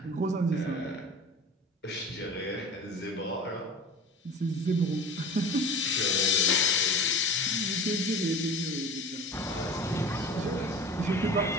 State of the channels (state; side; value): normal; both; correlation 0.39